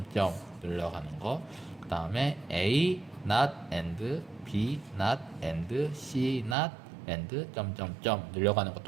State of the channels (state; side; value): drops out; left; at 6.6 s